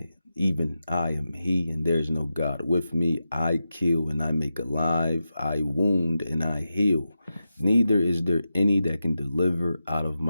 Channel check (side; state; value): both; inverted; correlation -0.90